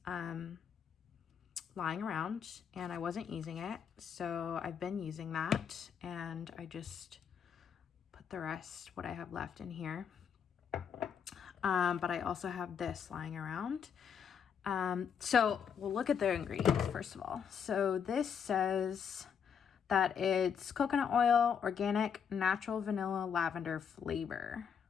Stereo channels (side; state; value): right; quieter; 7.4 dB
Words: lying around and I wasn't using it, so I've been using that, and I just put the rest, what I have left, in here. But I also have this lying around, So we'll look at the ingredients first of all. So this says that it's coconut oil, organic, natural vanilla lavender flavor,